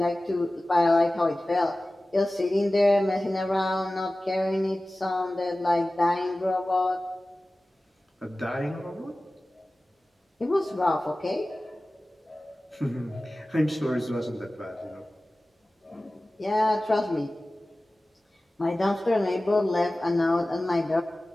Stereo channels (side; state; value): both; normal; correlation 0.97